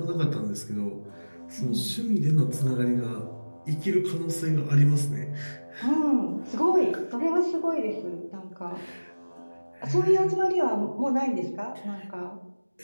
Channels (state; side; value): inverted; both; correlation -1.00